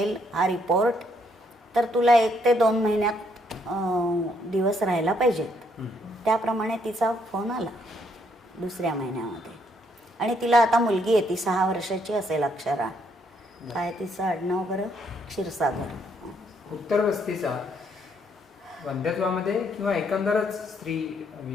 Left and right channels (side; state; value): both; normal; correlation 0.71